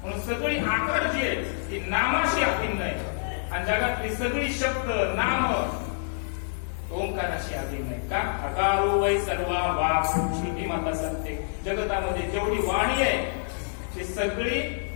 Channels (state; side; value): silent; right; digital silence